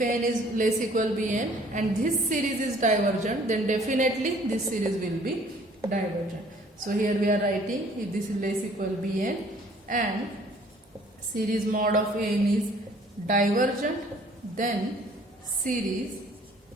An is less equal Bn and this series is divergent, then definitely this series will be divergent. So here we are writing, if this is less equal Bn and series mod of An is divergent, then series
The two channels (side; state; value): both; normal; correlation 0.56